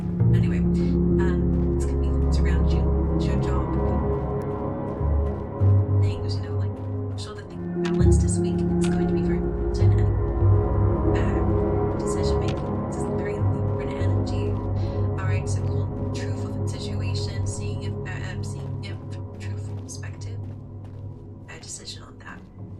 Anyway, decision on that.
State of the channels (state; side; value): identical; both; correlation 1.00